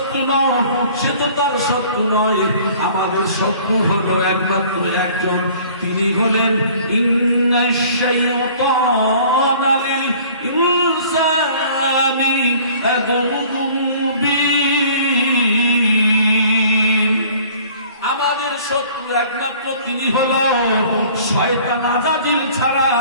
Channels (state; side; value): inverted; both; correlation -0.51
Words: নও, সে তো তার শত্রু নয়। আমাদের শত্রু হলো একমাত্র একজন, তিনি হলেন ইন্নাশ শাইতানা লিল ইনসানি আদুউম মুবিন। আমাদের শত্রু একমাত্র তিনি হলো শয়তান আজাজিল ছাড়া